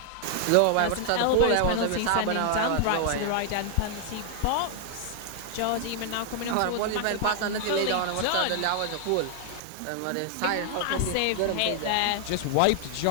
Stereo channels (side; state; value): both; different; correlation 0.00